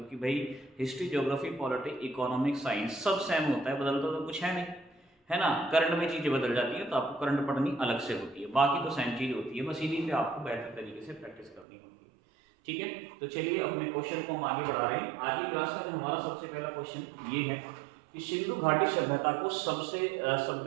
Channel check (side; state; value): left; drops out; at 11.7 s